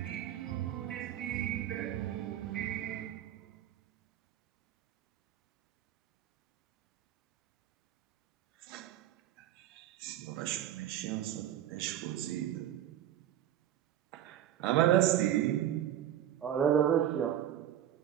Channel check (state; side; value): quieter; left; 11.4 dB